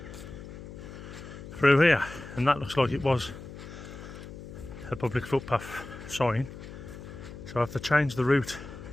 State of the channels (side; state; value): left; noise; hum, 13 dB below the sound